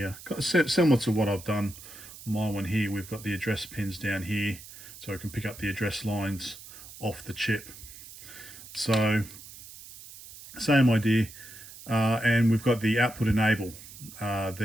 Similar to what I've done on my one here. We've got the address pins down here, so I can pick up the address lines off the chip. So, same idea. And we've got the output enable.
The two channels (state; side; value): noise; right; hiss, 16 dB below the sound